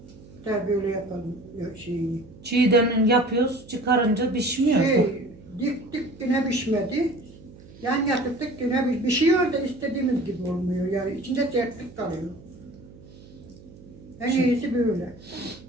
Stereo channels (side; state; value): right; noise; hum, 20 dB below the sound